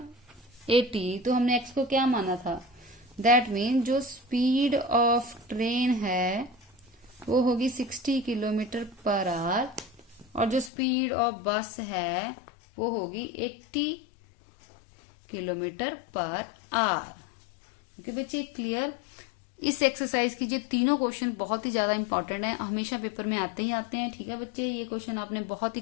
80। तो हमने x को क्या माना था, दैट मीन जो स्पीड ऑफ ट्रेन है वो होगी 60 किलोमीटर पर आवर, और जो स्पीड ऑफ बस है वो होगी 80 किलोमीटर पर आवर। ओके बच्चे, क्लियर। इस एक्सरसाइज की ये तीनों क्वेश्चन बहुत ही ज्यादा इंपॉर्टेंट है, हमेशा पेपर में आते ही आते हैं। ठीक है बच्चे, ये क्वेश्चन आपने बहुत ही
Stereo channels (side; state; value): right; drops out; at 10.7 s